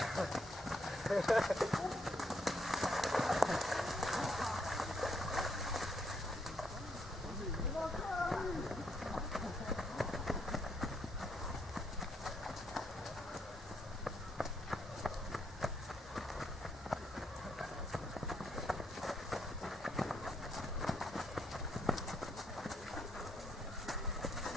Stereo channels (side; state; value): both; normal; correlation 0.75